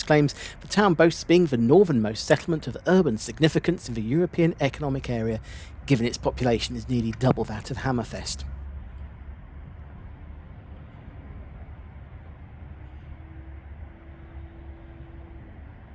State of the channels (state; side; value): identical; both; correlation 1.00